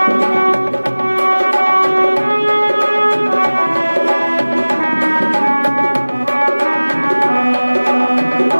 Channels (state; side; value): inverted; both; correlation -1.00